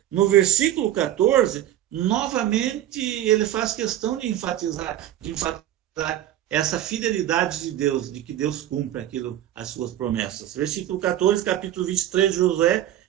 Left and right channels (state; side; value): quieter; left; 12.4 dB